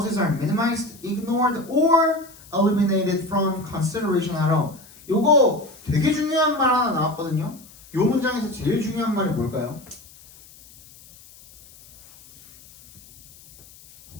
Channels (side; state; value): left; noise; hiss, 23 dB below the sound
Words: are minimized, ignored, or eliminated from consideration at all. 요거 되게 중요한 말 하나 나왔거든요. 요 문장에서 제일 중요한 말이 뭘까요?